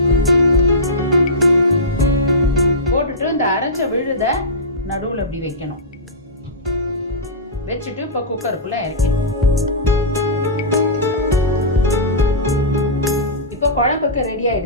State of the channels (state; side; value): normal; both; correlation -0.17